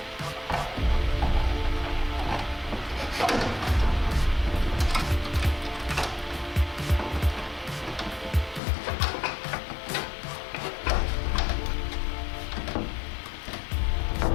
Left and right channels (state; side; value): drops out; right; at 8.6 s